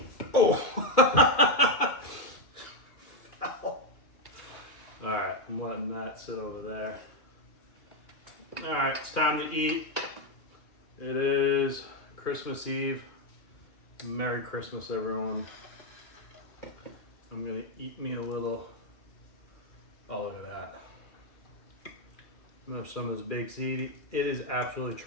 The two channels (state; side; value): late; right; 2.4 ms